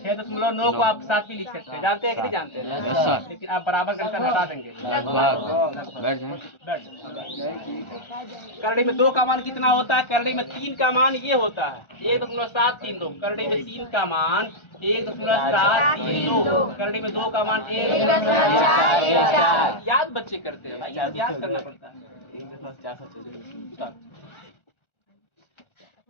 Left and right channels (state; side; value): late; right; 1.4 ms